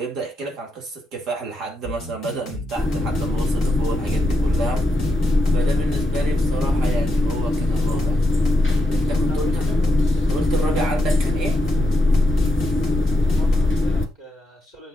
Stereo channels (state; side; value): normal; both; correlation 0.84